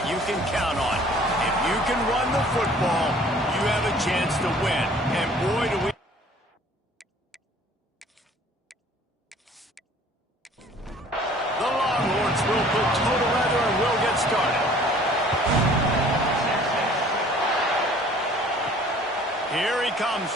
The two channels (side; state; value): both; normal; correlation 0.53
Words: you can count on. If you can run the football, you have a chance to win. And boy, do we... The Longhorns will put toe to leather and will get started. Here he comes